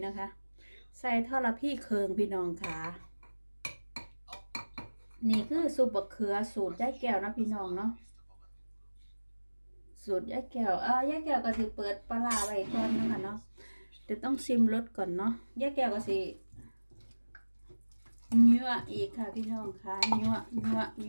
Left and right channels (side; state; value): both; inverted; correlation -1.00